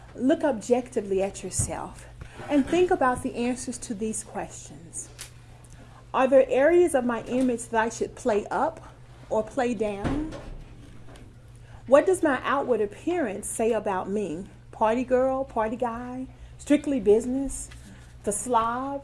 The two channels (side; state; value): both; identical; correlation 1.00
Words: look objectively at yourself and think about the answers to these questions. Are there areas of my image that I should play up or play down? What does my outward appearance say about me? Party girl, party guy, strictly business, the slob?